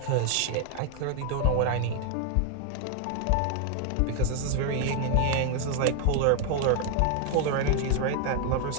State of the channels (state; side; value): different; both; correlation 0.01